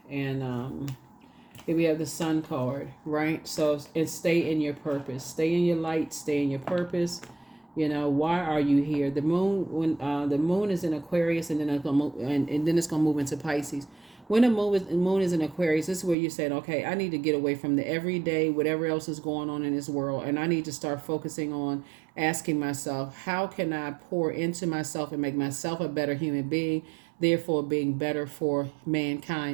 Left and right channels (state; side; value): drops out; left; at 16.2 s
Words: And here we have the Sun card, right? So, and stay in your purpose. Stay in your light. Stay in your purpose. Why are you here? The moon, when the moon is in Aquarius, and then it's gonna move, and then it's gonna move into Pisces. When the moon is in Aquarius, this is where you're saying, okay, I need to get away from the everyday, whatever else is going on in this world, and I need to start focusing on asking myself, how can I pour into myself and make myself a better human being, therefore being better for